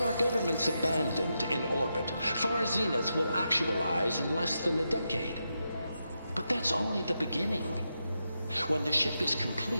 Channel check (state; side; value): inverted; both; correlation -0.86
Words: our government's abandoned in orbit, Far Zenith will actualize in less than a decade. But that's only the beginning. When the ship is